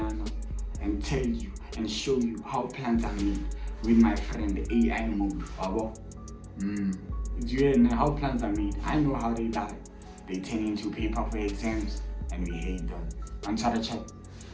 and tell you and show you how plants are made with my friend the AI mode. Do you know how plants are made? I know how they die. They turn into paper for exams, and we hate them. Answer chat.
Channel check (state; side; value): identical; both; correlation 1.00